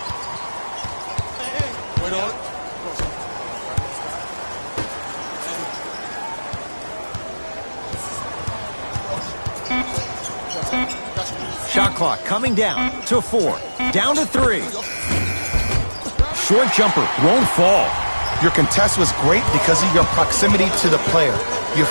Shot clock coming down to 4. Down to 3. Short jumper won't fall. Your contest was great because of your proximity to the player. You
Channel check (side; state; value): both; inverted; correlation -1.00